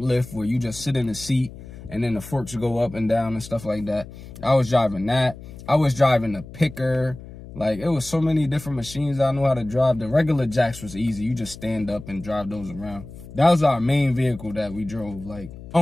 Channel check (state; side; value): noise; left; hum, 15 dB below the sound